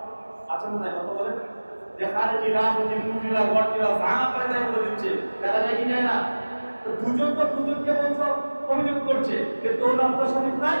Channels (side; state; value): both; inverted; correlation -1.00